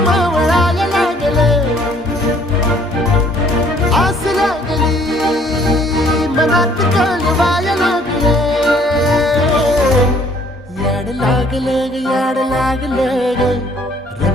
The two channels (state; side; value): normal; both; correlation 0.60